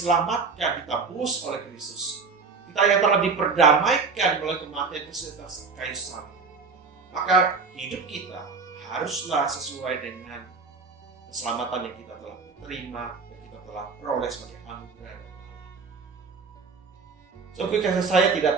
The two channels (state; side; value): quieter; left; 4.8 dB